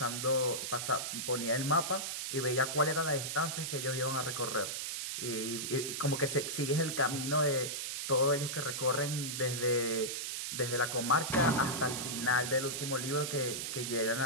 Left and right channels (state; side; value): noise; right; hiss, 3 dB below the sound